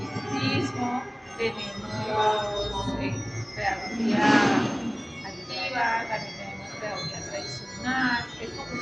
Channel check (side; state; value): both; identical; correlation 1.00